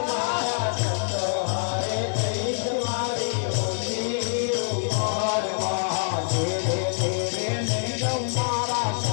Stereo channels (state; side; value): silent; right; digital silence